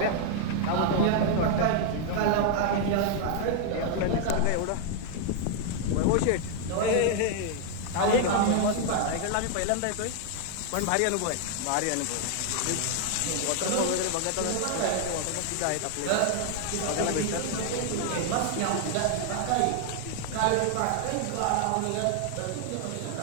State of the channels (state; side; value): different; both; correlation 0.00